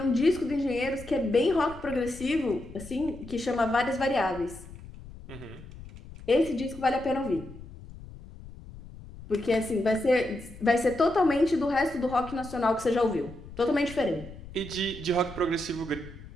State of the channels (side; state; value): left; noise; rumble, 16 dB below the sound